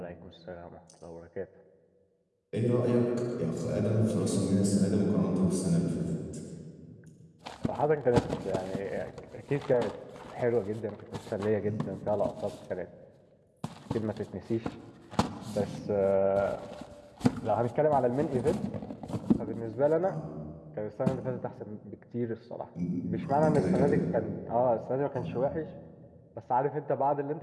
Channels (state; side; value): identical; both; correlation 1.00